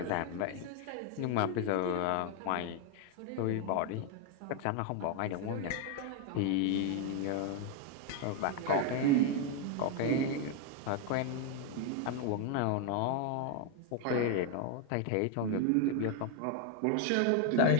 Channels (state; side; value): different; both; correlation 0.01